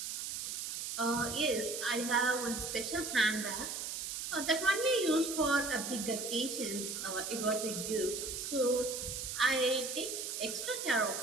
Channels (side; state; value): right; noise; hiss, 4 dB below the sound